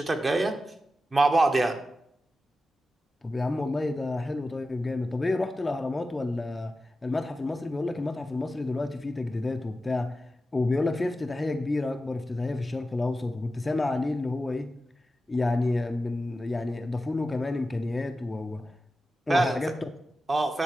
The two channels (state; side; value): normal; both; correlation 0.92